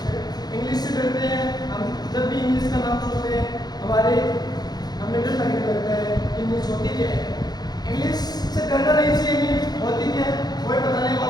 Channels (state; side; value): late; right; 0.19 ms